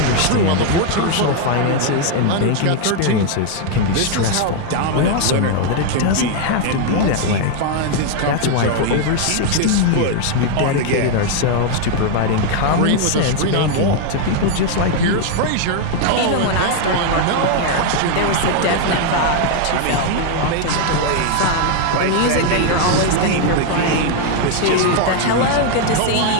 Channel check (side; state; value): both; different; correlation 0.01